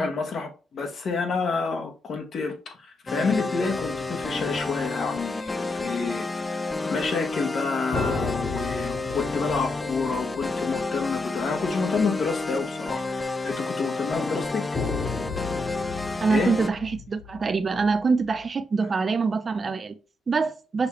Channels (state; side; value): normal; both; correlation 0.81